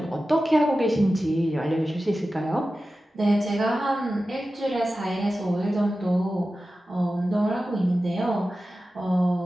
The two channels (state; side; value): normal; both; correlation 0.94